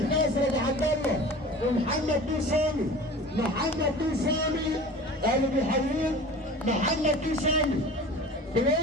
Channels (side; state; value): both; normal; correlation 0.39